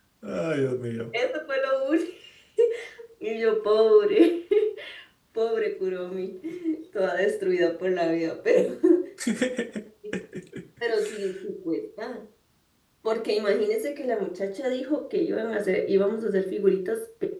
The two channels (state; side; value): identical; both; correlation 1.00